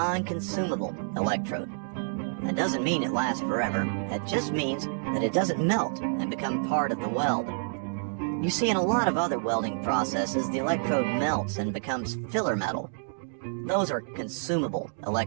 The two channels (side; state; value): left; silent; digital silence